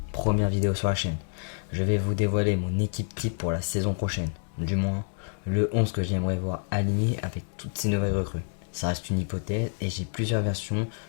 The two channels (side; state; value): right; silent; digital silence